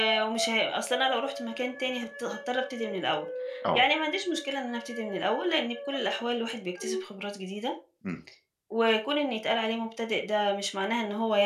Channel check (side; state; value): both; identical; correlation 1.00